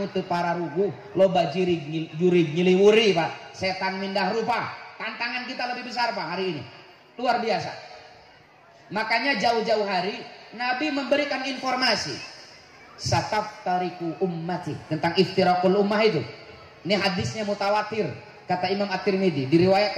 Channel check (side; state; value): both; identical; correlation 1.00